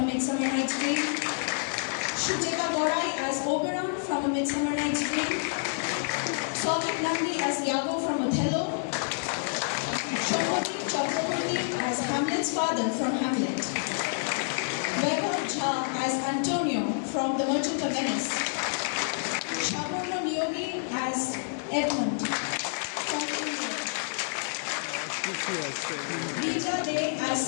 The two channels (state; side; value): silent; right; digital silence